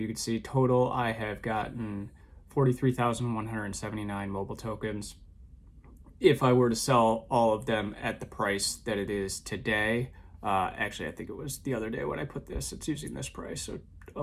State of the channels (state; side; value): identical; both; correlation 1.00